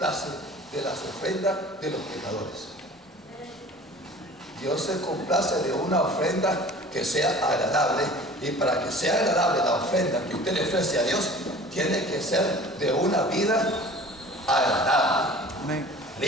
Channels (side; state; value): both; normal; correlation 0.44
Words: de las ofrendas de los pecadores. Dios se complace de una ofrenda que sea agradable, y para que sea agradable la ofrenda que usted le ofrece a Dios, tiene que ser de una vida agradable,